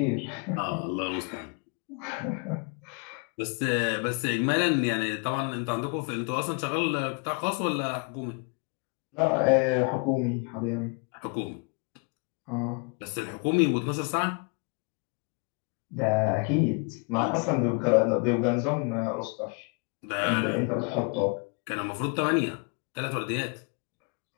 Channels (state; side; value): quieter; right; 35.3 dB